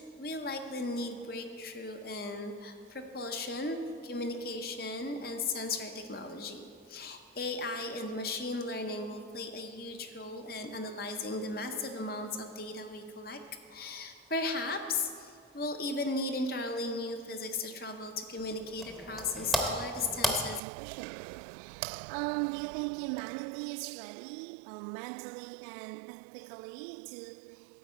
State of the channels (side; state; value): left; drops out; at 20.6 s